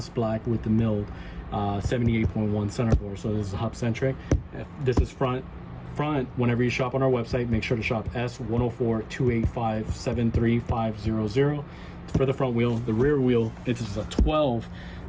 black with the milled 78.1 center bore. So this is hub centric. This is front. Whenever you shop on our website, make sure to shop S10428573500 for the front wheel. The rear wheel, it is a 12,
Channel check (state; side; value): identical; both; correlation 1.00